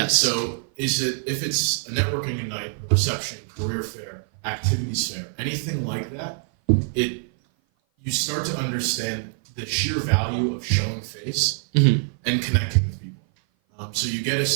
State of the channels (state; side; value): silent; left; 56 dB below the other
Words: So if it's a networking night, a reception, career fair, activities fair, anything like that, you start to understand the sheer value of showing face and connecting with people. So you get a